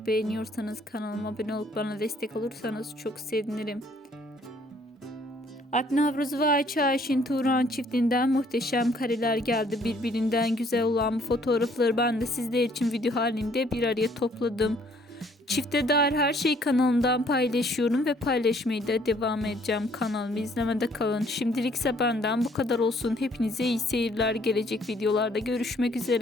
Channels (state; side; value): normal; both; correlation 0.62